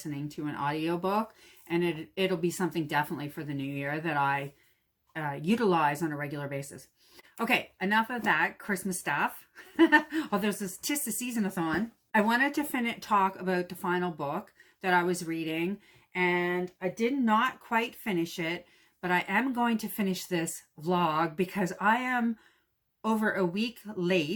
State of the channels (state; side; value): identical; both; correlation 1.00